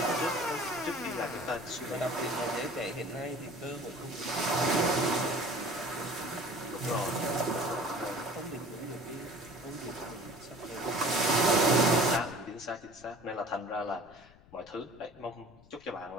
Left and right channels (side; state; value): left; noise; rumble, 25 dB below the sound